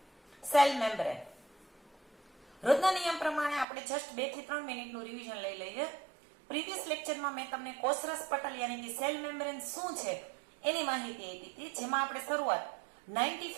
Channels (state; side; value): drops out; left; at 3.7 s